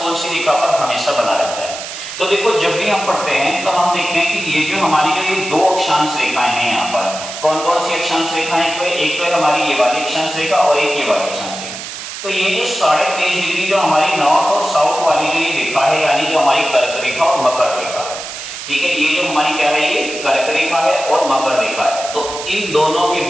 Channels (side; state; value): right; noise; hiss, 9 dB below the sound